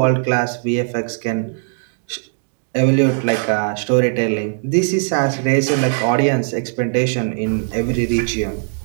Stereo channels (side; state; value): left; silent; digital silence